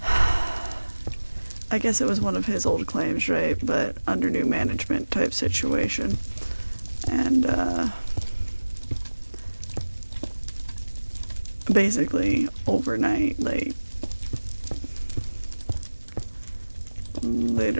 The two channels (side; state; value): both; inverted; correlation -1.00